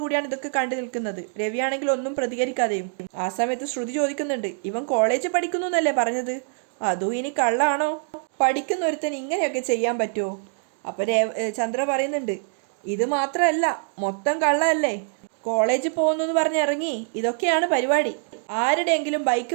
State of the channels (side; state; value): left; silent; digital silence